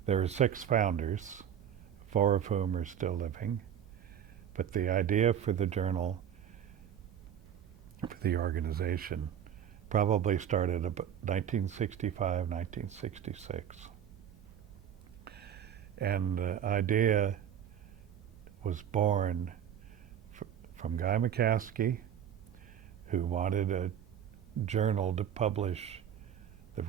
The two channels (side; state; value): left; quieter; 9.3 dB